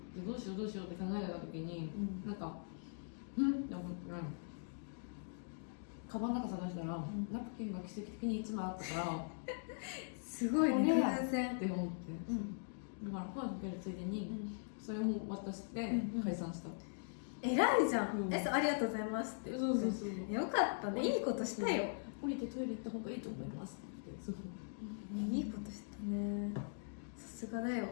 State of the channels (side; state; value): right; silent; digital silence